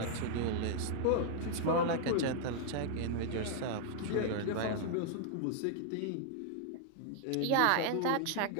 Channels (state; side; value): different; both; correlation -0.01